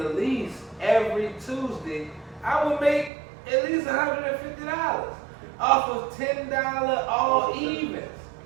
least, every Tuesday, I would make at least $150 off of $10 all evens.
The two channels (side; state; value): left; drops out; at 3.1 s